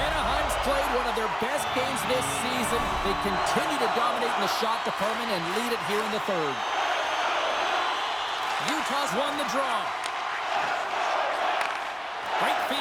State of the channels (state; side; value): identical; both; correlation 1.00